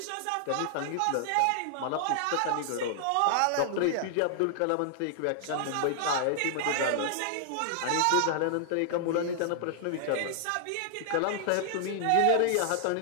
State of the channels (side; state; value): both; different; correlation -0.01